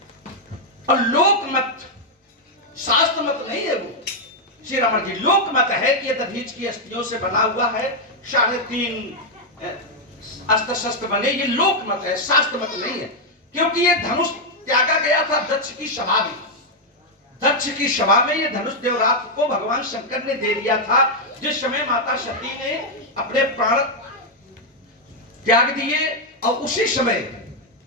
और लोक मत, शास्त्र मत नहीं है वो श्री रावण जी, लोक मत है कि ये दधीच की अस्थियों से बना हुआ है, 3.5 अस्त्र शस्त्र बने, ये लोक मत है, शास्त्र मत नहीं है। क्योंकि ये धनुष त्यागा गया था दक्ष की सभा में, दक्ष की सभा में ये धनुष देवरात को भगवान शंकर ने दे दिया था। जिस समय माता सती ने अपने प्राण त्याग दिए और उसी समय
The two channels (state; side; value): normal; both; correlation 0.00